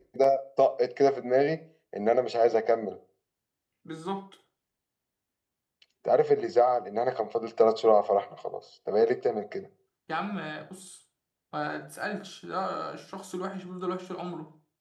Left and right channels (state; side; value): identical; both; correlation 1.00